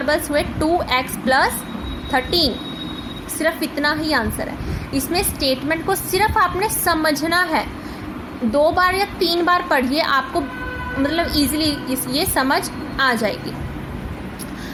हुए 2x प्लस 13। सिर्फ इतना ही आंसर है। इसमें स्टेटमेंट को सिर्फ आपने समझना है, 2 बार या 3 बार पढ़िए, आपको मतलब इजीली ये समझ आ जाएगी।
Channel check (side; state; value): both; identical; correlation 1.00